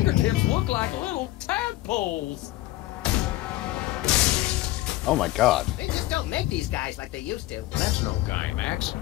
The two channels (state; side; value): quieter; right; 16.5 dB